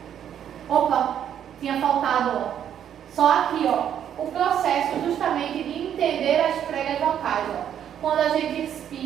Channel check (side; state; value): left; quieter; 9.6 dB